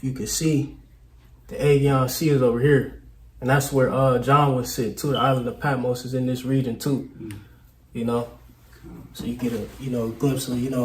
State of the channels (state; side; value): identical; both; correlation 1.00